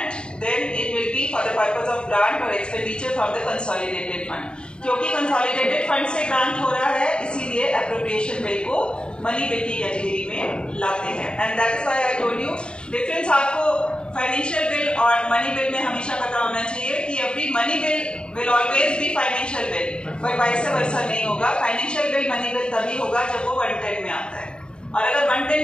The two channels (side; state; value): right; late; 0.051 ms